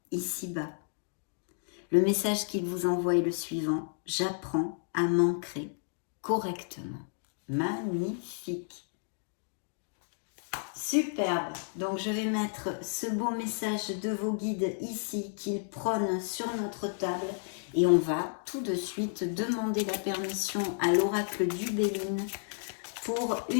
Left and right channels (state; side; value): silent; right; digital silence